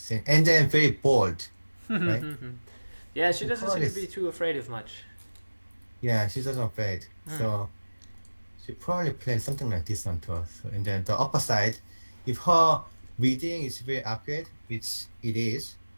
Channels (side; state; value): both; inverted; correlation -1.00